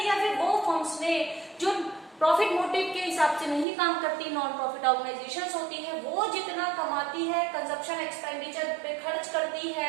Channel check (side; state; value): left; drops out; at 3.7 s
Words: फिर वो फर्म्स ने जो प्रॉफिट मोटिव के हिसाब से नहीं काम करती, नॉन प्रॉफिट ऑर्गेनाइजेशंस होती है, वो जितना कमाती है कंजप्शन एक्सपेंडिचर पे खर्च करती है